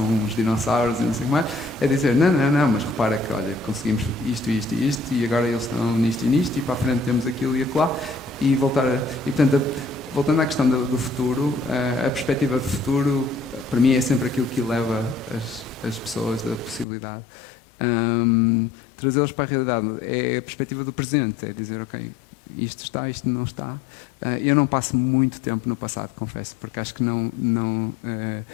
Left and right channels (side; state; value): right; drops out; at 16.9 s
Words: uns dinossauros e não sei o que mais, é dizer, não, mas repara que, olha, conseguimos isto e agora eles estão nisto e para a frente temos aquilo e acolá, e portanto, voltando à questão do futuro, a perspectiva de futuro, para mim é sempre aquilo que eleva as pessoas da possibilidade. Trazê-los para a realidade é a perspectiva do presente, é dizer, ok, isto está, isto não está. Eu não passo muito tempo no passado, confesso, porque acho que